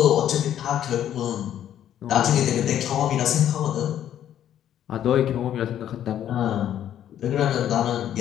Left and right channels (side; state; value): right; quieter; 10.8 dB